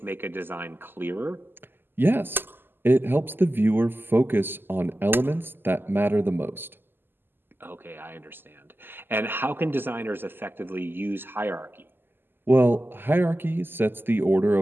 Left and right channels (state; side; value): late; left; 0.097 ms